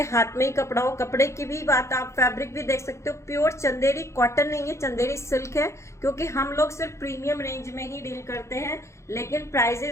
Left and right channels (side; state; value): right; late; 0.14 ms